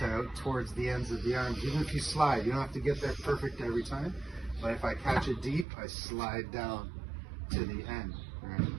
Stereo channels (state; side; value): drops out; left; at 5.7 s